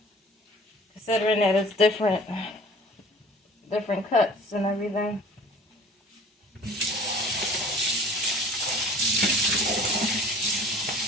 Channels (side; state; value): both; normal; correlation 0.47